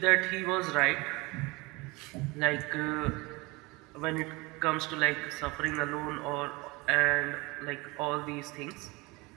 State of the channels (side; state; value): left; quieter; 24.3 dB